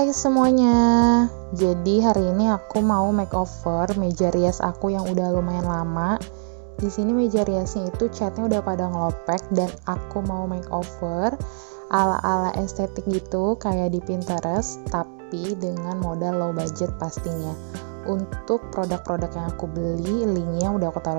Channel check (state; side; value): silent; left; digital silence